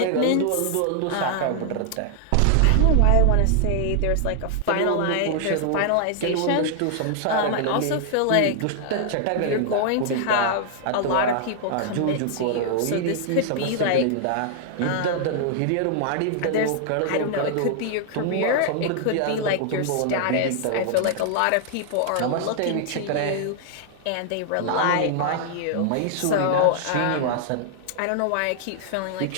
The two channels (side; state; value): both; different; correlation 0.00